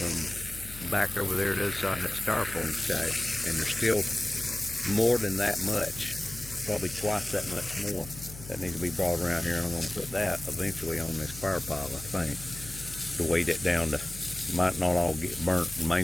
back over there to the other side of that styrofoam stack, and there's still more than that much, probably twice that much more that needs to be brought around here, and I'm going to put that eventually on this fire pile, I think, to weight it down to, might not all get burnt. The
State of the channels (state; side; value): noise; left; hum, 14 dB below the sound